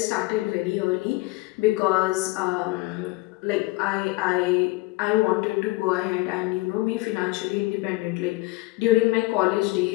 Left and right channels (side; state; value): right; quieter; 21.5 dB